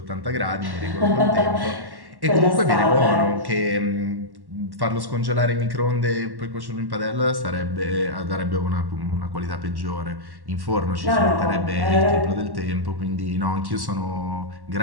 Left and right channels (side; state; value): left; late; 1.1 ms